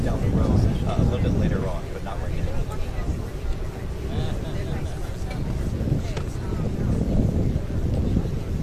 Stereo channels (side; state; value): both; identical; correlation 1.00